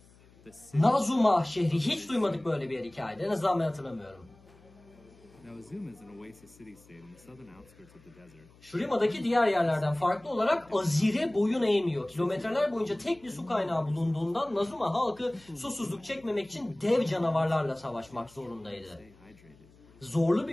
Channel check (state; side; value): noise; left; hum, 27 dB below the sound